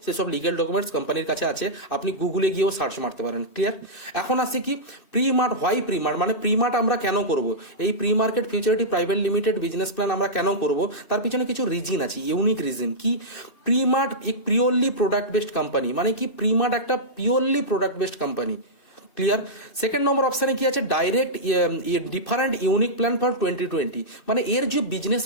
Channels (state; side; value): late; right; 2.6 ms